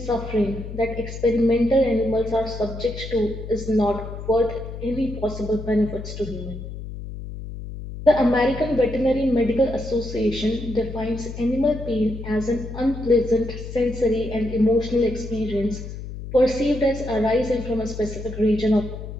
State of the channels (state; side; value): noise; left; hum, 9 dB below the sound